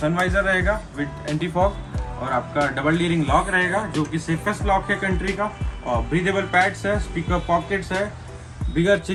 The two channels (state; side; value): identical; both; correlation 1.00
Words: वाइजर रहेगा विद एंटी फॉग, और आपका डबल डी रिंग लॉक रहेगा जो कि सेफेस्ट लॉक है कंट्री का। और ब्रीदेबल पैड्स है, स्पीकर पॉकेट्स है, बिगर